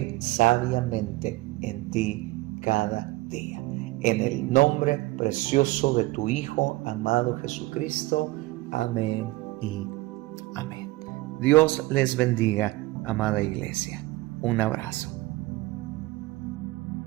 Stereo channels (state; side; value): quieter; left; 20.3 dB